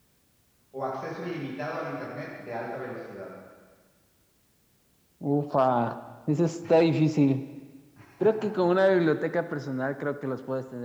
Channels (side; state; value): both; identical; correlation 1.00